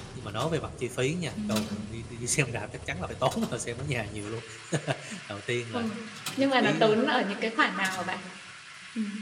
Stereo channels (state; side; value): identical; both; correlation 1.00